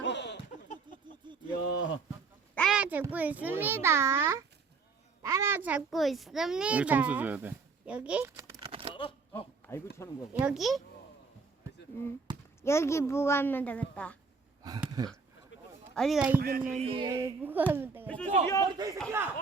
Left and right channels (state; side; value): quieter; left; 4.8 dB